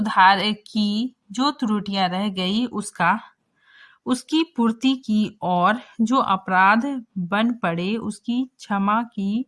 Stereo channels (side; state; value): both; identical; correlation 1.00